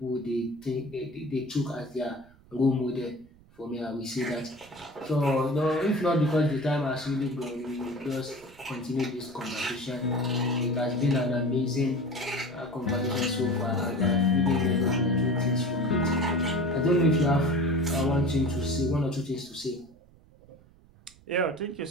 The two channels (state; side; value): noise; right; rumble, 26 dB below the sound